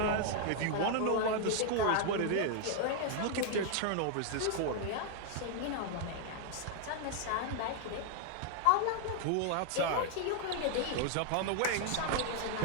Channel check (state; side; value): different; both; correlation 0.00